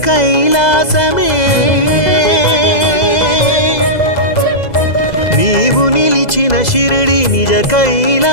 కైలాసమే నీవు నిలిచిన షిరిడి నిజ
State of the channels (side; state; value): right; late; 2.0 ms